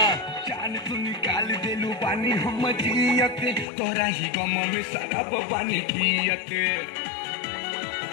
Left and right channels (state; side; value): drops out; right; at 3.7 s